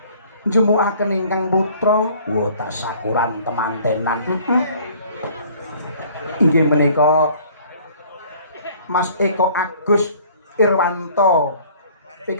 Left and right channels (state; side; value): inverted; both; correlation -0.54